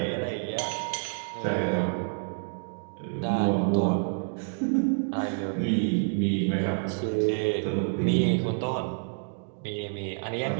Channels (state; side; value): silent; left; digital silence